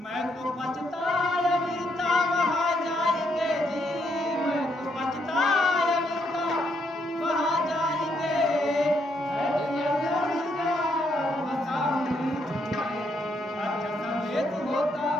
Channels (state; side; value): normal; both; correlation 0.75